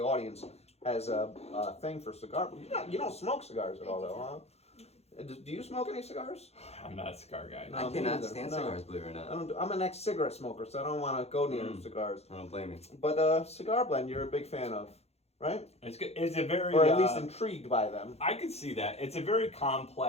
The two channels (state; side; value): late; right; 0.30 ms